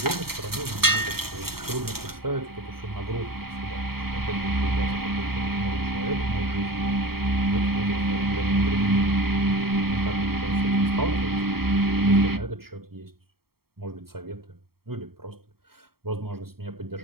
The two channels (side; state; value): left; late; 0.95 ms